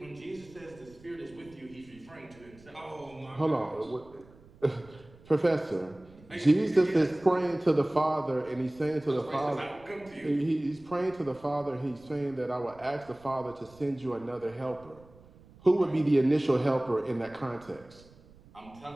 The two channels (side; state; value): right; noise; rumble, 24 dB below the sound